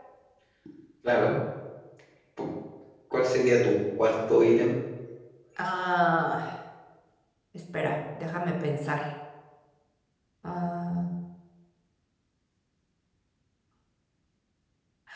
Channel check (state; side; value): identical; both; correlation 1.00